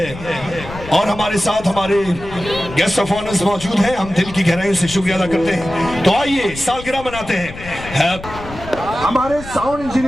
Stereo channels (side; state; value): left; noise; rumble, 13 dB below the sound